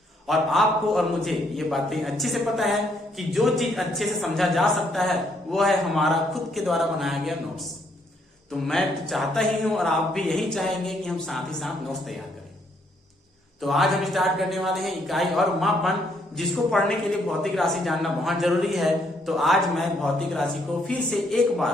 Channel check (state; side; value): normal; both; correlation 0.71